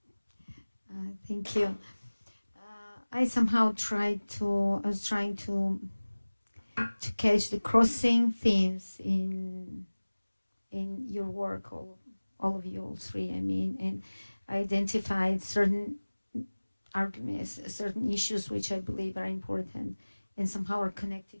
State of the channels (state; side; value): inverted; both; correlation -1.00